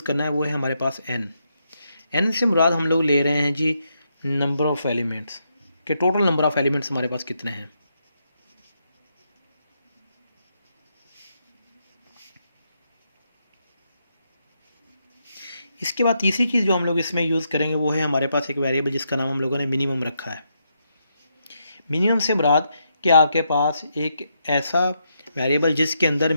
करना है वो है हमारे पास एन से मुराद हम लोग ले रहे हैं जी नंबर ऑफ़ एलिमेंट्स, के टोटल नंबर ऑफ़ एलिमेंट्स हमारे पास कितने हैं। इसके बाद तीसरी चीज़ जो हम लोग इसमें यूज़ करेंगे वो है हमारे पास एक वेरिएबल जिसका नाम हम लोगों ने मिनिमम रखा है। मिनिमम से मुराद कि आपके पास एक ऐसा वेरिएबल जिसके अंदर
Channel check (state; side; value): inverted; both; correlation -0.80